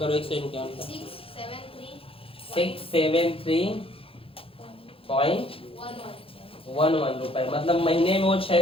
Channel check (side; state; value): right; late; 0.27 ms